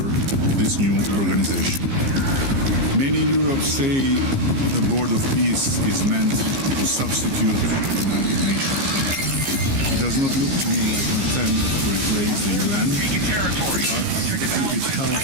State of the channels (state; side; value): late; left; 15 ms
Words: this new organization. Many in Europe say the Board of Peace is meant to substitute the United Nations. It does not look to me like an attempt to replace the UN, but if it